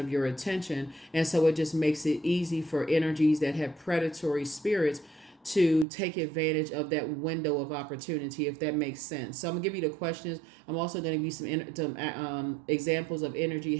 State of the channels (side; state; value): left; drops out; at 5.9 s